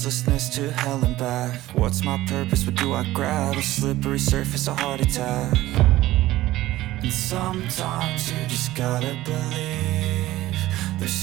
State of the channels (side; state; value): left; quieter; 16.3 dB